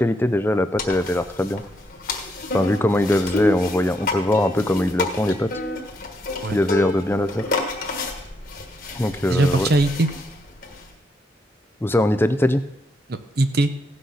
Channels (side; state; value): both; normal; correlation 0.77